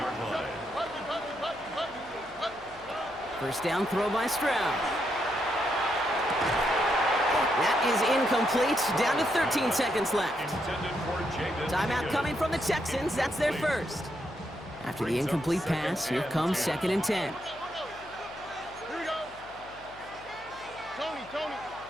line. First down throw by Stroud. That is incomplete. Down to 13 seconds left. Timeout coming from the Texans. That's their first. After the incomplete pass, here comes 2nd and 10. Here we go. Tony.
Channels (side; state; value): left; noise; hum, 22 dB below the sound